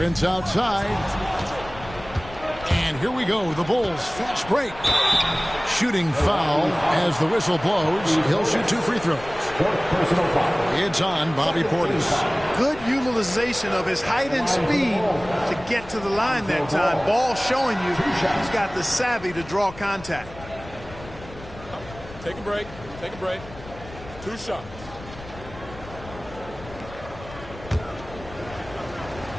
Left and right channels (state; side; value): noise; left; rumble, 16 dB below the sound